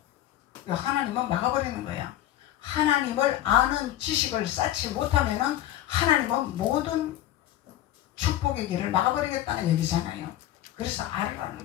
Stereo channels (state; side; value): quieter; right; 13.1 dB